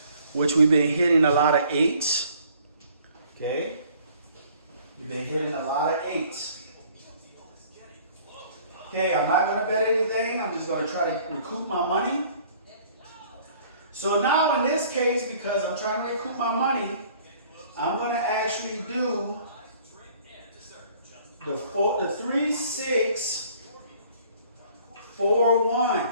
which we've been hitting a lot of 8s. Okay? We've been hitting a lot of 8s. Okay, I'm not going to bet anything. I'm just going to try to recoup my money. So now in this case, because I'm trying to recoup my money, I'm going to actually do the 3, 6, 4,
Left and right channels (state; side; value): inverted; both; correlation -0.56